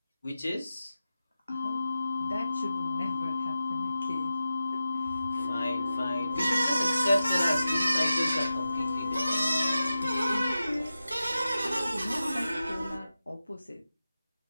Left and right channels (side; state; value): both; inverted; correlation -0.92